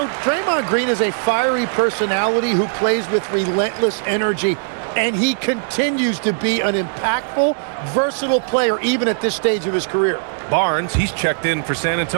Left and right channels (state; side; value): silent; left; digital silence